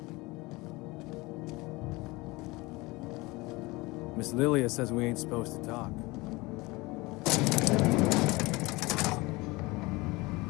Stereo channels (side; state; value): right; quieter; 22.9 dB